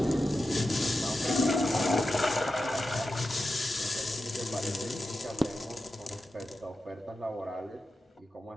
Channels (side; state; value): both; normal; correlation 0.91